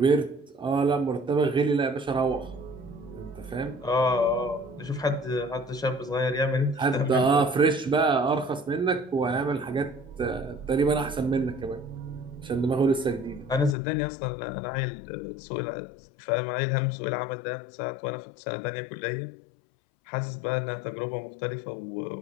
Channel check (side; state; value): right; drops out; at 13.8 s